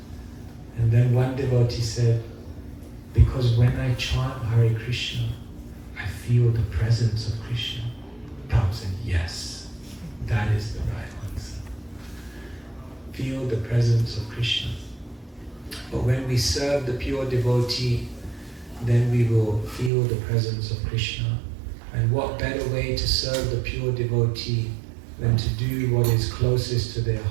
And then one devotee said, because when I chant Hare Krishna, I feel the presence of Krishna. Prabhupada said, yes, that is the right answer. Feel the presence of Krishna. But when we serve the pure devotee, then we will feel the presence of Krishna. And what better way to serve the pure devotee than to do what is closest to their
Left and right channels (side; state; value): left; drops out; at 19.9 s